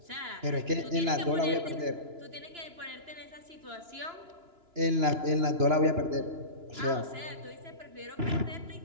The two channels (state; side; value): late; left; 2.9 ms